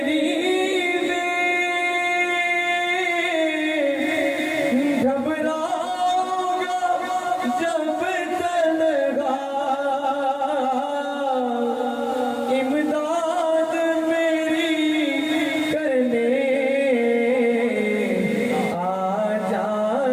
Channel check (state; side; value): identical; both; correlation 1.00